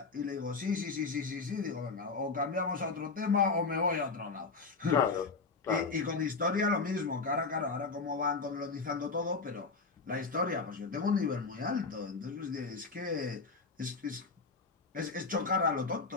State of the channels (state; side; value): quieter; right; 4.3 dB